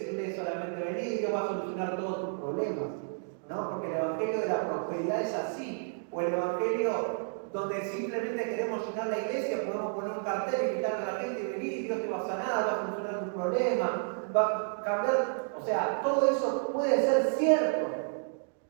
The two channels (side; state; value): left; silent; digital silence